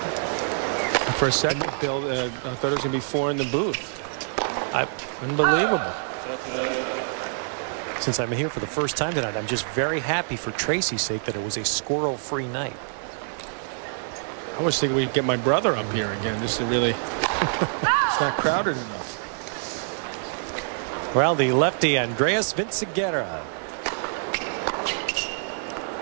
For a second, Bill, I thought it was going to be 4 in the booth. Unbelievable. Since I'm here for the first time tonight, I'm just very happy for Tracy's sake that it was a squirrel-free night. I was thinking we'd get my brother up here again. This is really, it's not crowded enough. Well, the lefty Andreas Vinciguerra.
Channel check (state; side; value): silent; left; digital silence